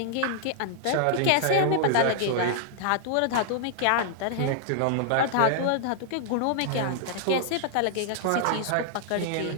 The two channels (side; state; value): both; different; correlation -0.01